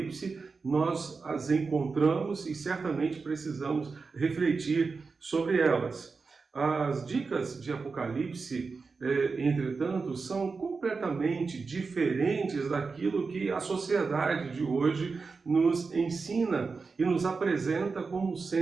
Nós as encontramos e certamente precisamos refletir sobre elas. As dicas de Apocalipse, entretanto, são completamente diferentes daquilo que a sociedade de hoje nos ensina e nos apresenta como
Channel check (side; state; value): left; quieter; 4.6 dB